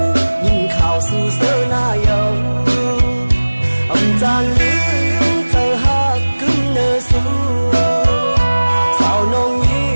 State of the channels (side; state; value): both; inverted; correlation -1.00